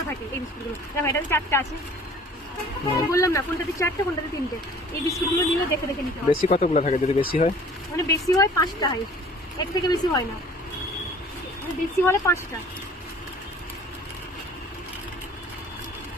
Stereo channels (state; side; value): normal; both; correlation 0.50